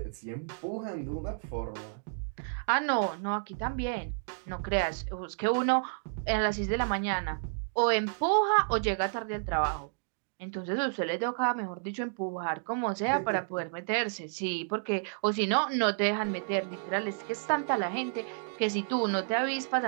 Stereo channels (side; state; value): left; silent; digital silence